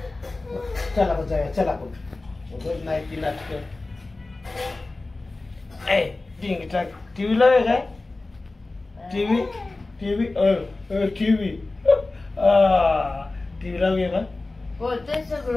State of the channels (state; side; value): quieter; right; 3.2 dB